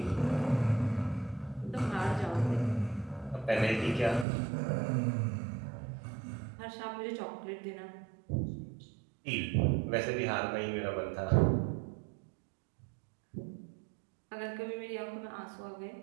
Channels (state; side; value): drops out; left; at 4.2 s